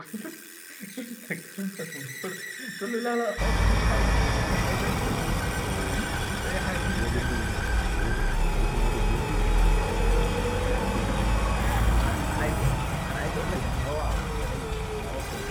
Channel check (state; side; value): identical; both; correlation 1.00